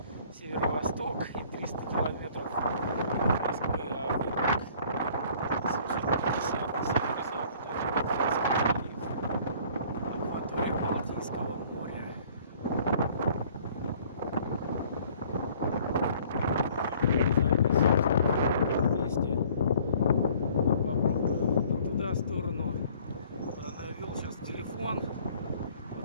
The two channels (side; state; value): both; inverted; correlation -0.55